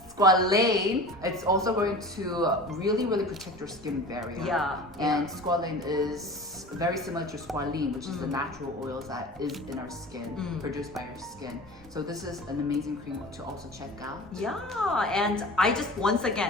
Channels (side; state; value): left; noise; rumble, 24 dB below the sound